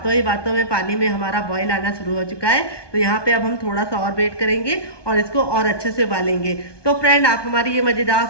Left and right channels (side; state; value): right; late; 1.2 ms